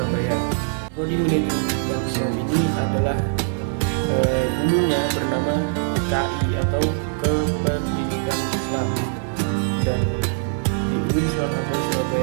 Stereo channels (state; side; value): silent; left; digital silence